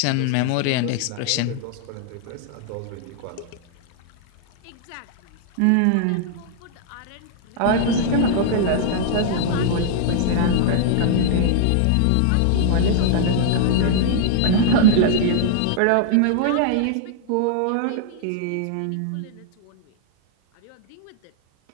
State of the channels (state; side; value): different; both; correlation -0.01